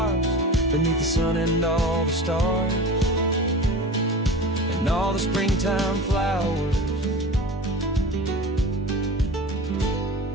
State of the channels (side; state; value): both; normal; correlation 0.34